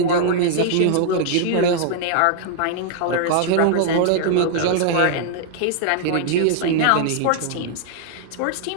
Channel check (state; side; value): different; both; correlation -0.01